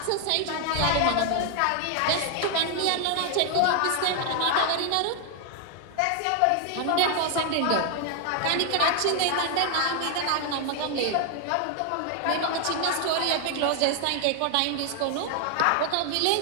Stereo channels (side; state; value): both; different; correlation 0.00